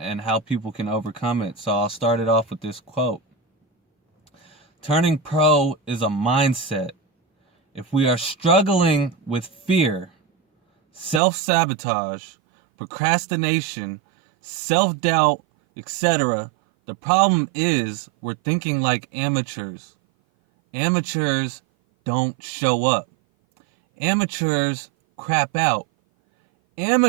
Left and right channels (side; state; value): left; drops out; at 11.2 s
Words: how people can overcome it. So I'll start it off with this quote. Turning pro is a mindset. If we are struggling with fear, self-sabotage, procrastination, self-doubt, etc., the problem is we're thinking like amateurs. Amateurs don't show up. Amateurs crap out.